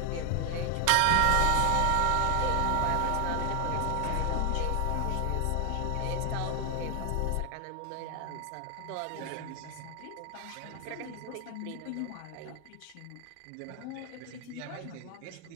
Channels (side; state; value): both; different; correlation 0.00